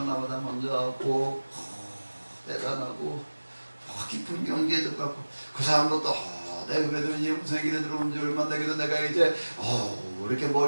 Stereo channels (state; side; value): inverted; both; correlation -1.00